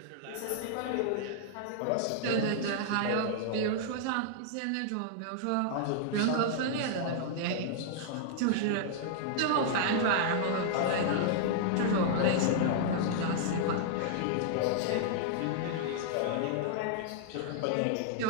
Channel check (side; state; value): both; different; correlation -0.01